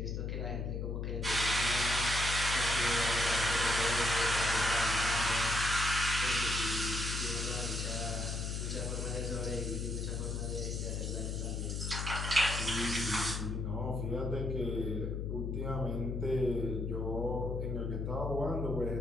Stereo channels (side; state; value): left; noise; hum, 2 dB below the sound